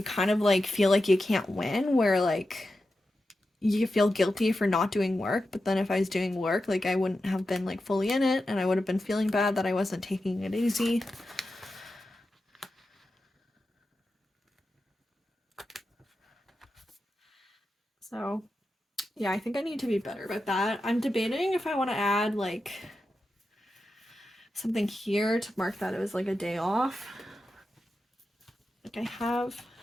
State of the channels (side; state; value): both; normal; correlation 0.91